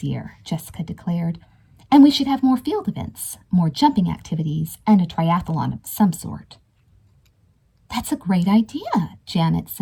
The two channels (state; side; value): identical; both; correlation 1.00